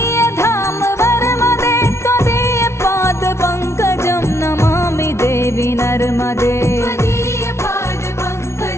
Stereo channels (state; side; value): late; right; 0.13 ms